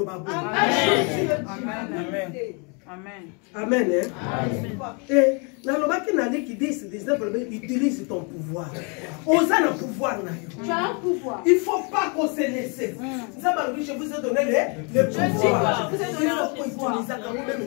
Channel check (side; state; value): right; quieter; 34.5 dB